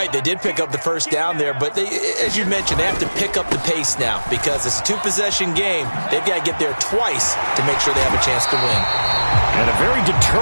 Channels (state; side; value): inverted; both; correlation -1.00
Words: They did pick up the 1st down there, but they, as you mentioned, they have to pick up the pace now because it's a 2-possession game. They've got to get there twice to make sure they have a chance to win. And a very